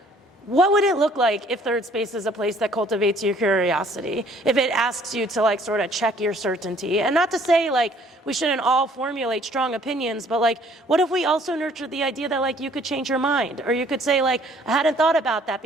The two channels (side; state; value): both; normal; correlation 0.59